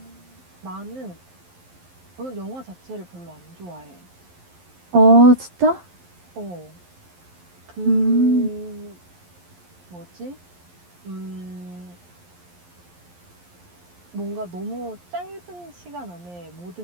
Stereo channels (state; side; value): late; left; 11 ms